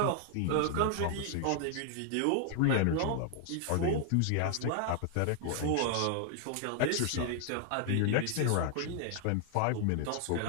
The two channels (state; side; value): different; both; correlation 0.00